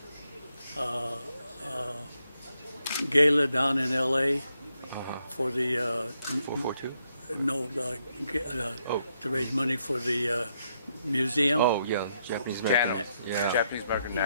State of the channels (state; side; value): inverted; both; correlation -0.77